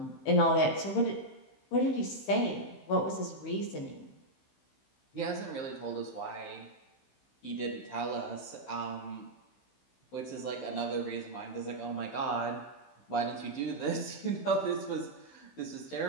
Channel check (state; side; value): late; right; 15 ms